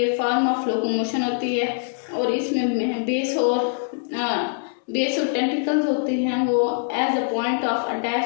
फॉर्म ऑफ लोकोमोशन होती है और इसमें बेस और टेंटिकल्स होते हैं वो as a point of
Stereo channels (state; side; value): silent; right; digital silence